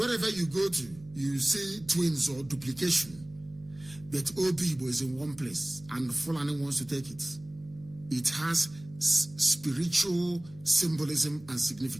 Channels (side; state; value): right; noise; hum, 21 dB below the sound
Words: you go to, you see twins or duplication. But Obibo is in one place and Fulani wants to take it. It has spiritual symbolism and